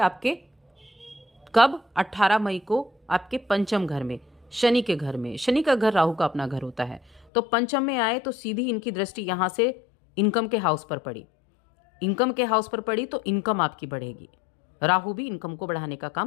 कब, 18 मई को आपके पंचम घर में, शनि के घर में। शनि का घर राहु का अपना घर होता है, तो पंचम में आए तो सीधी इनकी दृष्टि यहाँ से इनकम के हाउस पर पड़ी। इनकम के हाउस पर पड़ी तो इनकम आपकी बढ़ेगी, राहु भी इनकम को बढ़ाने का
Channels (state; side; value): drops out; right; at 7.2 s